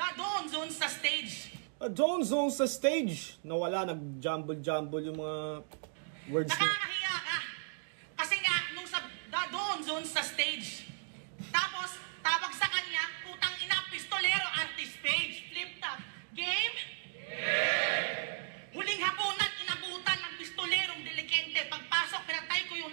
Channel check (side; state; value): left; silent; digital silence